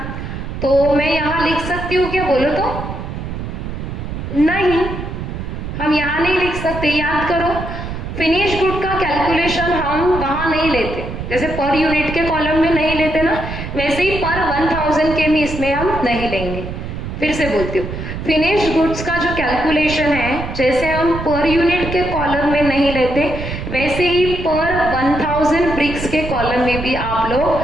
तो मैं यहाँ लिख सकती हूँ क्या? बोलो तो। नहीं, हम यहाँ नहीं लिख सकते। याद करो, फिनिश गुड का कैलकुलेशन हम वहां नहीं लेते, जैसे पर यूनिट के कॉलम में नहीं लेते ना, वैसे ही पर 1000 के भी इसमें हम नहीं लेंगे। फिर से बोलती हूँ, फिनिश गुड्स का जो कैलकुलेशन है, जैसे हम पर यूनिट के कॉलम में नहीं लेते, वैसे ही पर 1000 ब्रिक्स के कॉलम में भी आप लोग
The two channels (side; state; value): right; noise; rumble, 7 dB below the sound